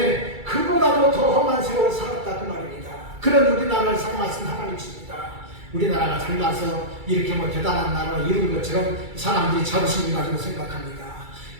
그보다도 더 험한 세월을 살았다 그 말입니다. 그런 우리나라를 사랑하신 하나님이십니다. 우리나라가 잘나서 이렇게 뭐 대단한 나라를 이룬 것처럼 사람들이 자부심을 가지고 생각합니다.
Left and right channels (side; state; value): left; late; 2.3 ms